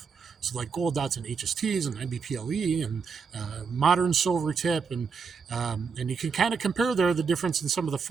So like gold dots and HSTs and IBPLE and modern silver tip, and you can kind of compare there the difference in some of the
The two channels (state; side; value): quieter; left; 5.6 dB